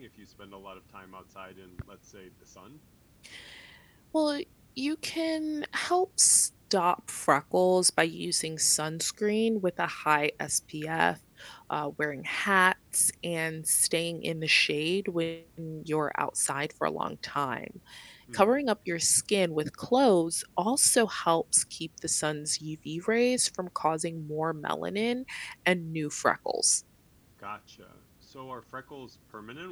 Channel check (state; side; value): identical; both; correlation 1.00